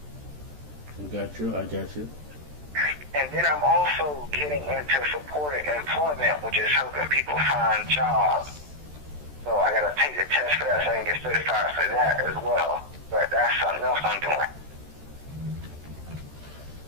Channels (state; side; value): late; left; 13 ms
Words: I got you. And then I'm also getting into supported employment, which is helping people find jobs. So I got to take the test for that so I can get certified for that as well. But that's something else I'm doing.